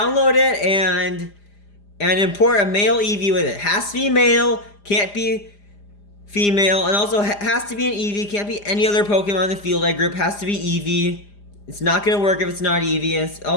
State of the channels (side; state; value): right; late; 4.9 ms